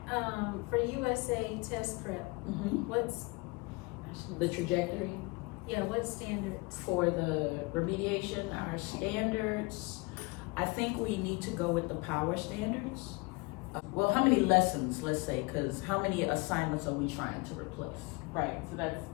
for USA test prep, what's, The trajectory what standards? for the remediation, our standards, I think we need to go with the power standards. Well, how many lessons, let's say, because how many assignments are we trying to replace? Right, so that's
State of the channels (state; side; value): quieter; right; 26.7 dB